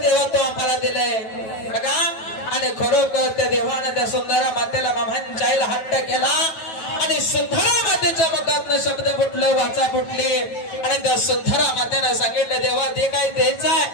तो आम्हाला दिलंय बघा। आणि खरोखर त्या देवाने त्या सुंदरा मातेला मामांच्या आईला हट्ट केला आणि सुंदरा मातेच्या मुखातनं शब्द फुटले, वाचा फुटली आणि त्या सुंदरा मातेने सांगितलं देवा ते काही द्यायचं आहे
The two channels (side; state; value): right; late; 9.2 ms